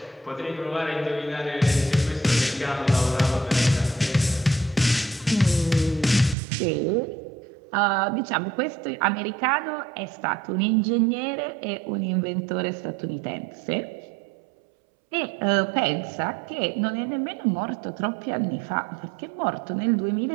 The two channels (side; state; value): left; drops out; at 6.4 s